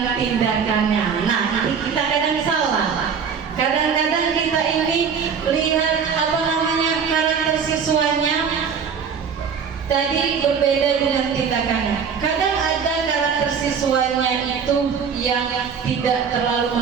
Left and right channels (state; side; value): quieter; left; 6.6 dB